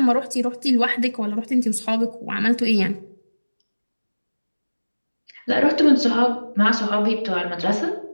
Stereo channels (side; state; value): both; inverted; correlation -1.00